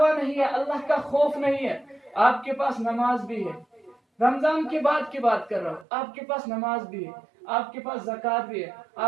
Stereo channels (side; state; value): left; drops out; at 5.9 s